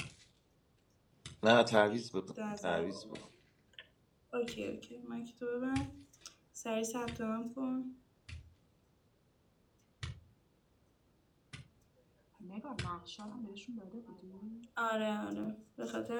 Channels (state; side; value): identical; both; correlation 1.00